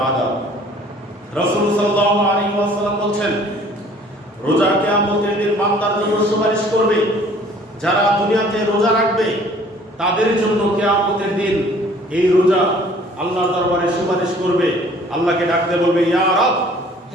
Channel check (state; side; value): normal; both; correlation 0.54